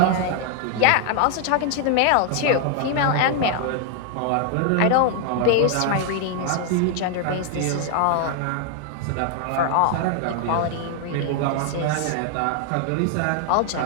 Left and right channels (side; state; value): both; different; correlation 0.00